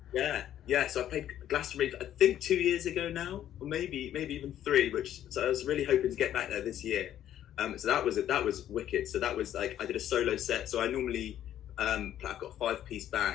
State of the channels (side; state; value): right; quieter; 11.3 dB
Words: So I played Glastonbury, I think 2 years ago now, or maybe even 3. So I was really hoping to get back there this year. So that was wicked. So that was like I did a solo set. So I normally I've got a 5-piece